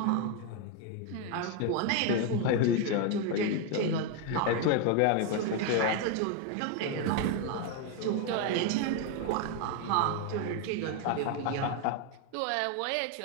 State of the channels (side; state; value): both; different; correlation 0.01